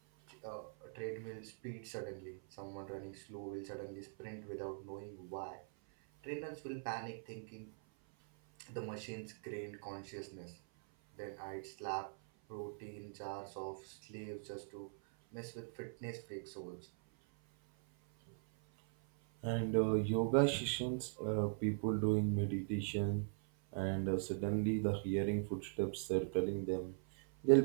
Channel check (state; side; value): silent; left; 50 dB below the other